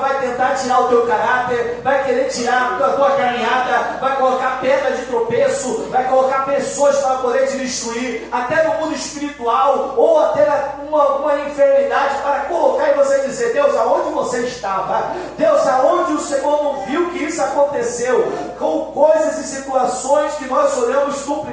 tentar tirar o teu caráter, vai querer tirar a tua caminhada, vai colocar pedra de tropeço, vai colocar pessoas para poder te destruir, até no mundo espiritual, ou até uma enfermidade, para colocar em você e dizer, Deus, aonde você estava? Deus, aonde o Senhor não viu que isso aconteceu? Com coisas e situações que nós olhamos no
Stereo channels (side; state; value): both; identical; correlation 1.00